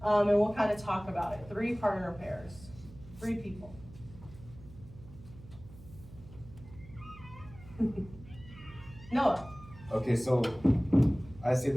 and we'll kind of talk about it. 3 partner pairs, 3 people. Noah. Okay, so I say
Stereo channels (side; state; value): right; noise; hum, 18 dB below the sound